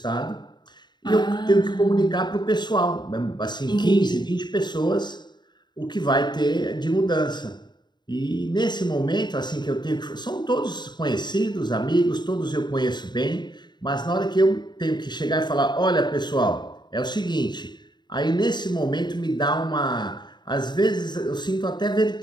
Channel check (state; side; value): late; right; 0.21 ms